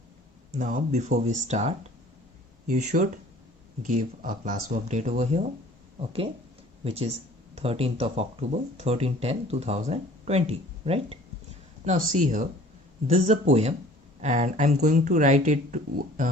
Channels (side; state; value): both; normal; correlation 0.50